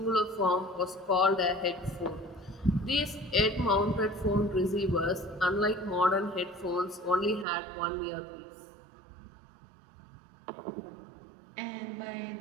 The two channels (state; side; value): drops out; left; at 7.5 s